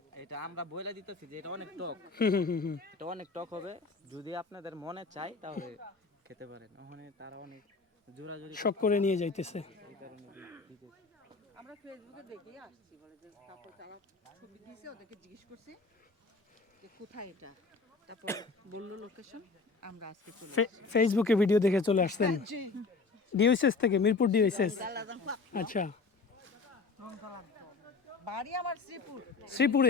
এটা আমরা বইলা দিতেছি যে এটা অনেক টক, হুম। এটা অনেক টক হবে, যদি আপনাদের মনে চাই তাহলে খেতে পারেন। ওখানে তারা অনেক জোরাজুরি শখ করে নিয়ে যাইতেছে। এই কারণে দিতেছি। আমরা ফেসবুকে দেখেই আসছি, বলে যে তারপর তারা ছবি দিয়েছে, ওদেরকে জিজ্ঞেস করছি যে কোথায় এটা, তারপর বললো লোকেশন, আমরা আজকে চলে ফেসবুকে ভিডিও দেখে চলে আসছেন? ডিওএসএস থেকে, মিরপুর ডিওএসএস। আচ্ছা, বাড়ি আমার শ্রীপুর,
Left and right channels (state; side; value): quieter; right; 4.1 dB